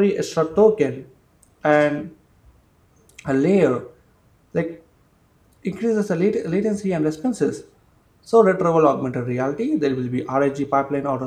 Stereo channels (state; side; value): identical; both; correlation 1.00